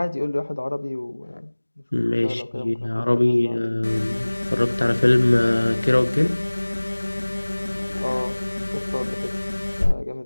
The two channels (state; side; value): inverted; both; correlation -1.00